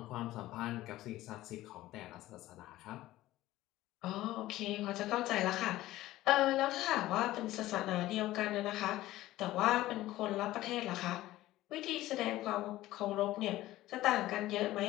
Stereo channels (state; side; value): quieter; right; 16.0 dB